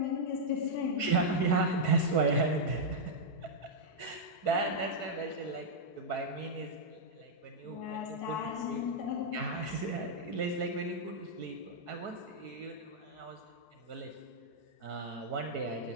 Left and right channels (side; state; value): right; late; 4.6 ms